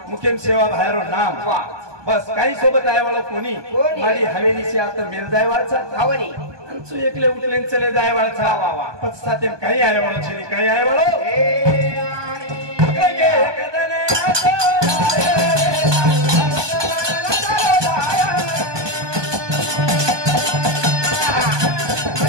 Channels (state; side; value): late; left; 1.2 ms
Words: मुखेम सेवा बाहेरो नाम बस काही सोबत आहे वाला कोणी माडी हवेलीची आता मेल जायवाळचा हवनी अंचू एकले उठलेन चले जायवाळचा वा वा पच सातेम काही आहे वाला छेनी काही आहे वाला